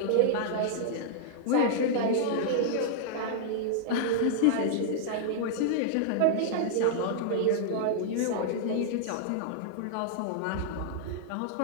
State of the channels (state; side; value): different; both; correlation -0.01